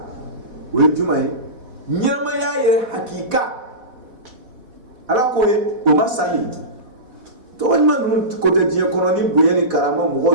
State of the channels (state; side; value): late; left; 4.1 ms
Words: o ye jumɛn ye ɲɛnamaya yɛrɛ hakika ala ko ye o ma sali tɔgɔ ɲuman ninnu ko tɛ diɲɛ kɔnɔ ni bonya ni karama mɔgɔw